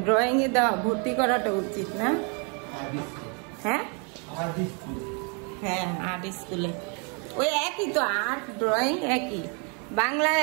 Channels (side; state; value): left; quieter; 36.4 dB